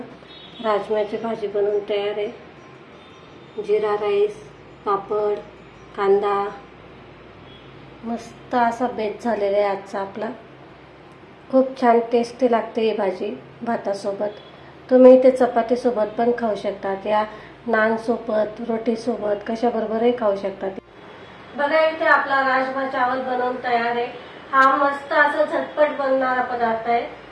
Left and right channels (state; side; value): identical; both; correlation 1.00